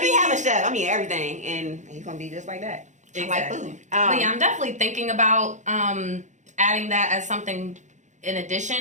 having a chef. I mean, everything. And he's going to be just like that. Exactly. Like food. But yeah, I'm definitely thinking about adding that as something in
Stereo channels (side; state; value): left; late; 0.35 ms